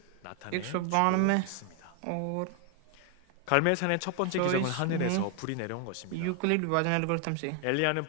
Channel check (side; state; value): both; different; correlation 0.00